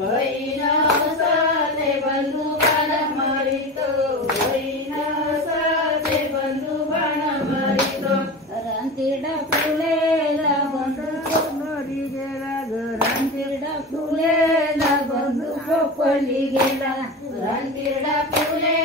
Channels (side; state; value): both; normal; correlation 0.27